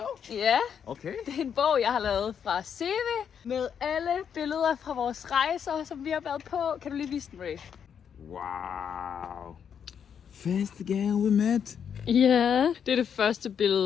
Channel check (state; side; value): quieter; right; 7.8 dB